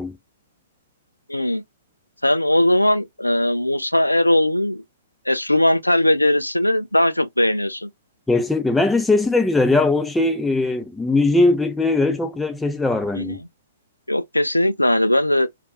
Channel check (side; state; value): both; inverted; correlation -0.30